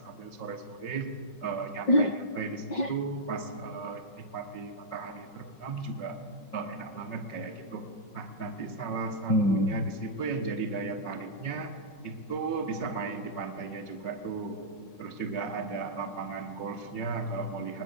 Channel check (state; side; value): late; right; 5.4 ms